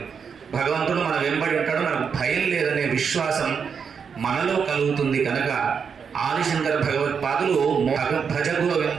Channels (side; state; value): left; quieter; 6.4 dB